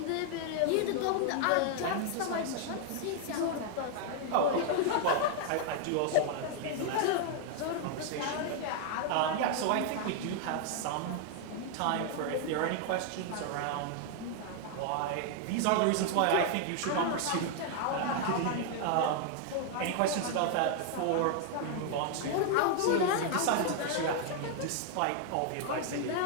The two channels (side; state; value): both; different; correlation 0.00